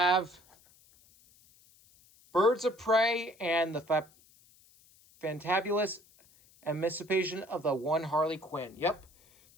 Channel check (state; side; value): noise; left; hiss, 29 dB below the sound